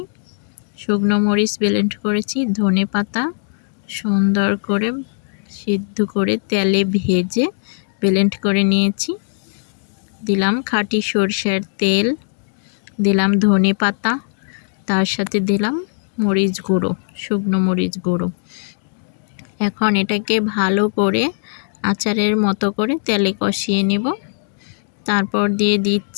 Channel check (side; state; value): right; silent; digital silence